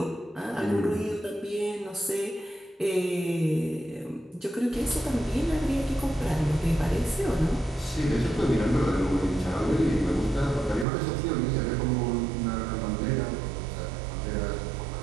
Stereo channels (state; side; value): drops out; left; at 10.9 s